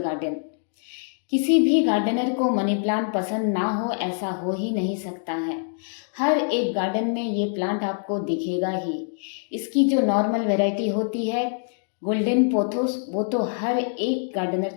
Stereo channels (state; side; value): silent; right; 62 dB below the other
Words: किसी भी गार्डनर को मनी प्लांट पसंद ना हो ऐसा हो ही नहीं सकता है। हर एक गार्डन में ये प्लांट आपको दिखेगा ही। इसकी जो नॉर्मल वैरायटी होती है गोल्डन पोथोस, वो तो हर एक गार्डनर